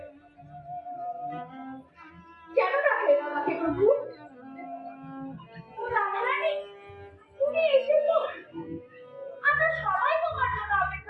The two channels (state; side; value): identical; both; correlation 1.00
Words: কেন ডাকলেন আমাকে প্রভু? ও রাধারানী, তুমি এসেছো? আমরা সবাই তোমার জন্য